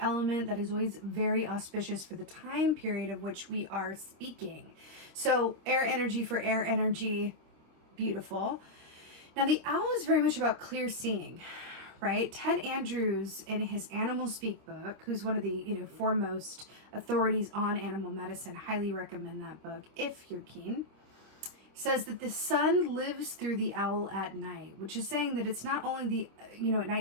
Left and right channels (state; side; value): late; left; 26 ms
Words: element, that is always very auspicious for the time period of which we are speaking. So air energy for air energy, beautiful. Now the owl is very much about clear seeing, right? Ted Andrews, in his Animal Speak book, who's one of the foremost authorities on animal medicine, highly recommend that book if you're keen, says that the sun lives through the owl at night, which is saying that it's not only at